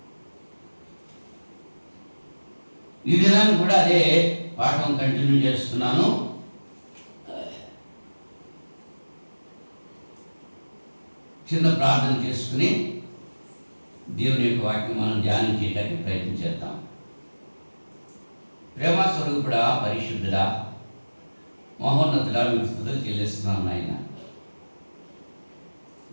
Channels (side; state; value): both; inverted; correlation -1.00